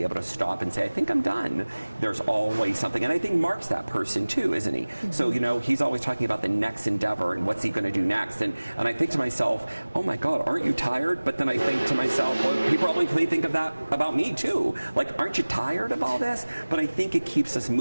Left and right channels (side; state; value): both; inverted; correlation -1.00